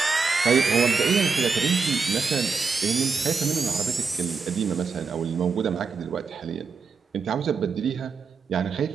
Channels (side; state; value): left; quieter; 5.0 dB